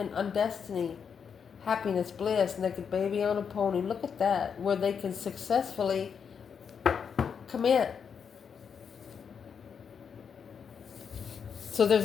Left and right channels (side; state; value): right; quieter; 6.8 dB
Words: on destiny. Happiness, bliss, naked baby on a pony. Look at that. Where they can successfully commit. So